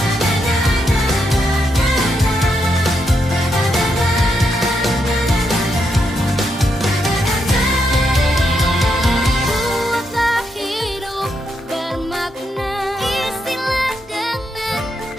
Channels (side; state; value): both; normal; correlation 0.81